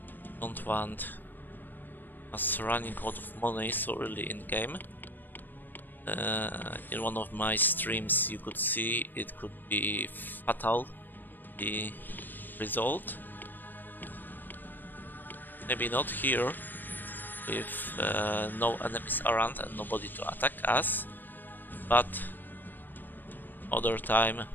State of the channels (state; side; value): late; right; 0.091 ms